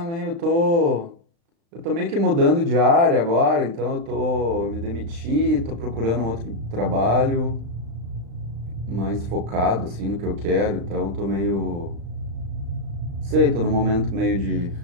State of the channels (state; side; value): late; left; 35 ms